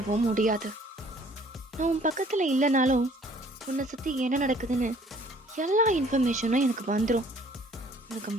முடியாது. நான் உன் பக்கத்தில் இல்லைனாலும் உன்னை சுற்றி என்ன நடக்குதுன்னு எல்லா இன்ஃபர்மேஷனும் எனக்கு வந்துடும். உனக்கு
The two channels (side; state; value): both; normal; correlation 0.57